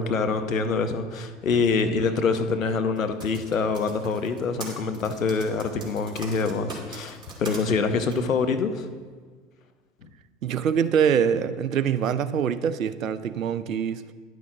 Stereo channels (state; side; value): normal; both; correlation 0.43